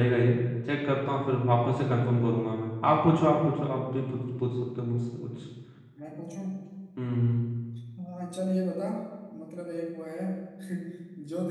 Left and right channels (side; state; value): both; identical; correlation 1.00